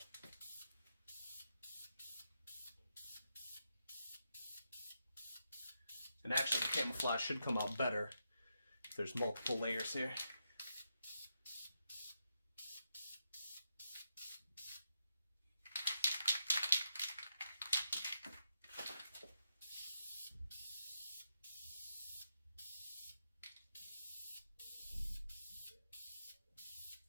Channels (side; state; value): both; inverted; correlation -0.84